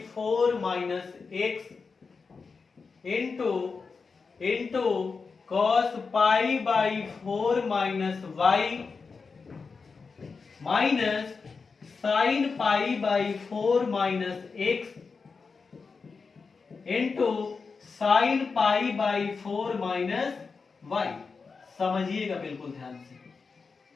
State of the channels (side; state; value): right; quieter; 4.8 dB